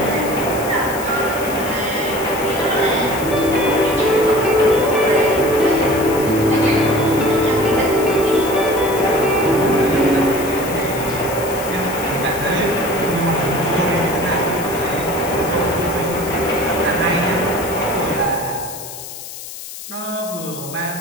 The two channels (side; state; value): left; noise; hiss, 12 dB below the sound